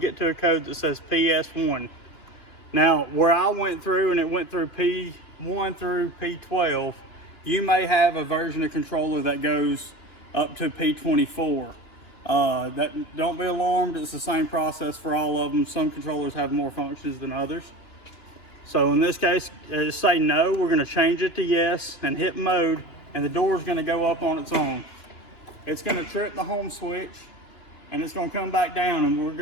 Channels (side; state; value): right; late; 2.9 ms